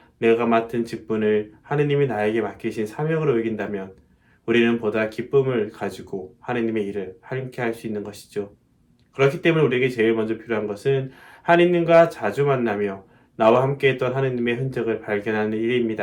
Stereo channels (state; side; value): identical; both; correlation 1.00